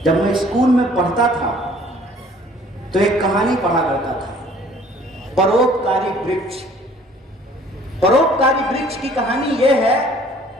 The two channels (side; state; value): both; normal; correlation 0.55